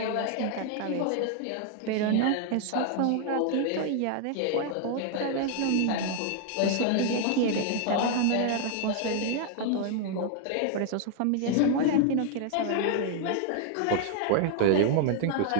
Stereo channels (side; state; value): both; different; correlation 0.00